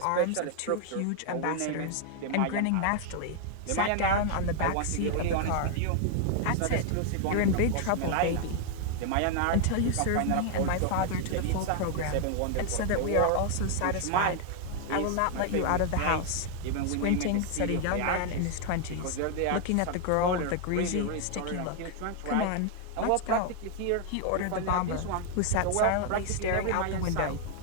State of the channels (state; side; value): different; both; correlation 0.00